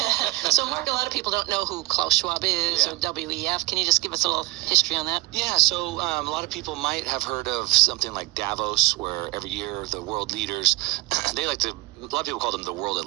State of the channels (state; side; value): quieter; left; 21.3 dB